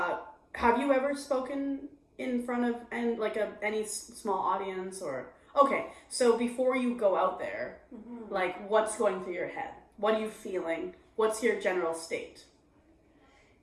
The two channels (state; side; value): identical; both; correlation 1.00